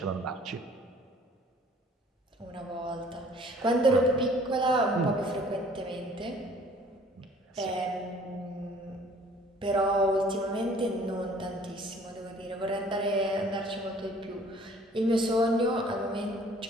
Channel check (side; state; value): both; normal; correlation 0.54